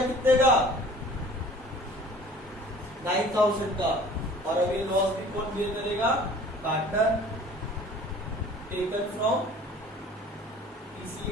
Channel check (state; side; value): normal; both; correlation 0.48